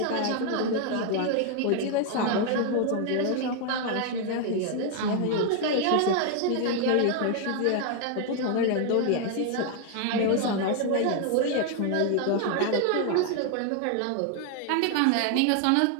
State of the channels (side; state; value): both; different; correlation 0.00